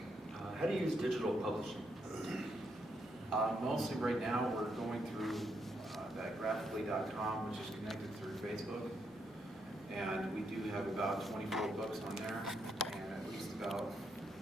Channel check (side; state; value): both; normal; correlation 0.78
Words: How do you use digital publishing? mostly right now, we're going through that graphically.com, which is connected through Facebook. And we do have about 24 books on there, and at least about